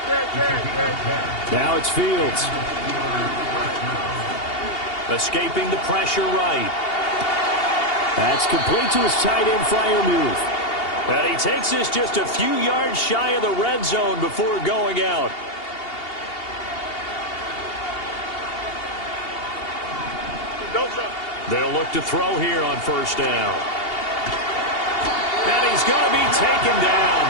Now it's Fields. Escaping the pressure right. That's complete to his tight end Freiermuth. And he takes this just a few yards shy of the red zone before going out. They'll look to throw here on first down. And he's going to be taken down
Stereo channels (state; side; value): late; right; 2.8 ms